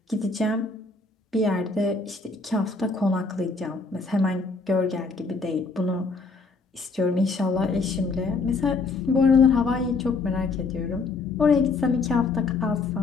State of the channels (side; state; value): right; quieter; 4.0 dB